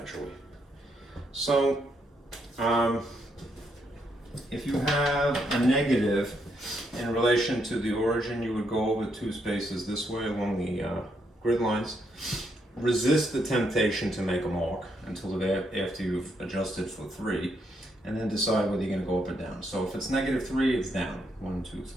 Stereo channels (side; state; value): both; normal; correlation 0.77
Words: So, if you have a negative in relation to the origin, you would go over 2 spaces this way along the grid lines. Resist the temptation to make a mark until after you've adjusted for 3, and then decide whether you're going to go up or down. So if it's -3, it's down. 1, 2,